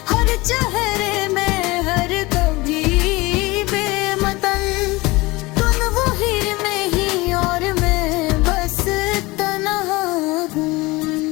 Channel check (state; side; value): quieter; right; 22.3 dB